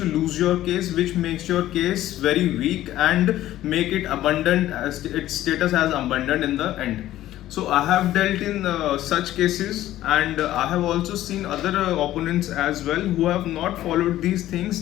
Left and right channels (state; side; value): quieter; right; 14.0 dB